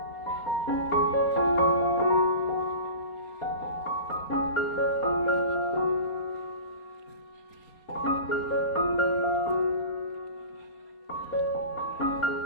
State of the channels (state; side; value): late; right; 4.2 ms